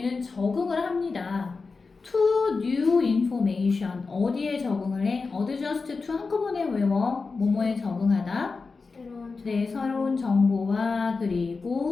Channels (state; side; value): quieter; right; 4.3 dB